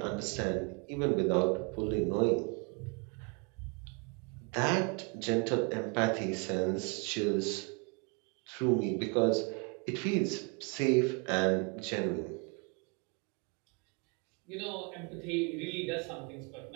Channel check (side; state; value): left; quieter; 33.2 dB